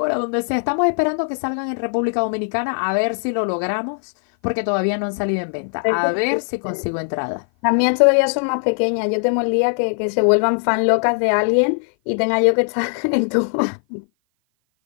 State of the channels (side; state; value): right; silent; 56 dB below the other